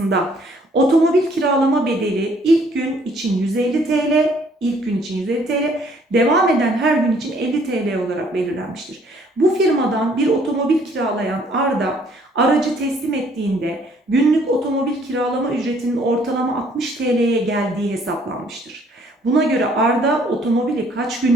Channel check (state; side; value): normal; both; correlation 0.62